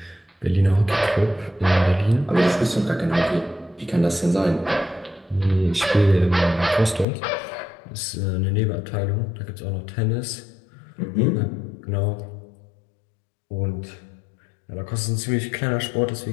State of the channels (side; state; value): right; drops out; at 7.1 s